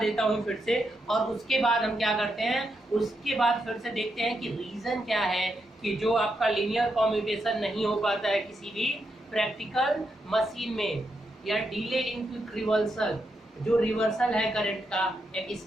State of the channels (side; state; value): both; normal; correlation 0.83